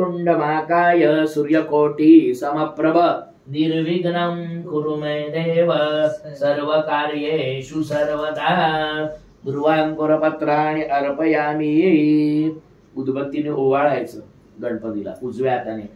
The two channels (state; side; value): identical; both; correlation 1.00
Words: महाकाय सूर्यकोटि समप्रभ निर्विघ्नं कुरु मे देव सर्वकार्येषु सर्वदा. दुर्वांकुरपत्राणि अर्पयामि. उदबत्तीने ओवाळायचं गणपतीला. उजव्या हाताने.